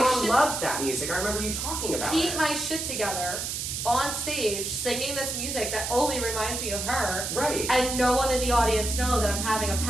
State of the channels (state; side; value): noise; right; hiss, 3 dB below the sound